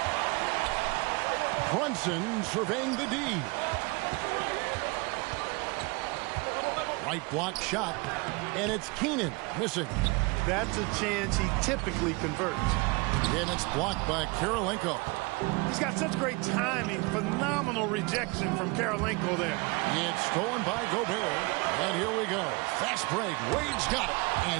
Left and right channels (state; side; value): quieter; left; 27.6 dB